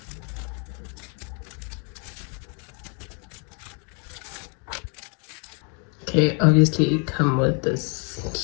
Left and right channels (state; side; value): quieter; right; 37.3 dB